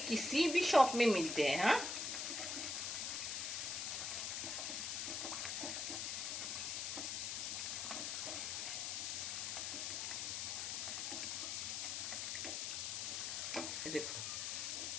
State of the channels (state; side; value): noise; left; hiss, 1 dB below the sound